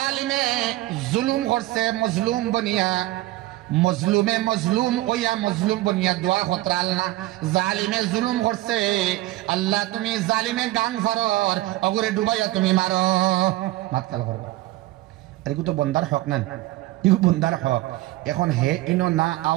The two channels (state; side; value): quieter; left; 17.7 dB